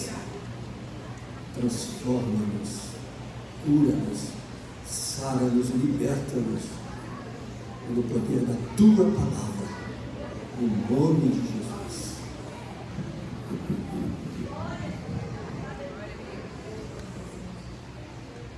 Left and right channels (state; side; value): identical; both; correlation 1.00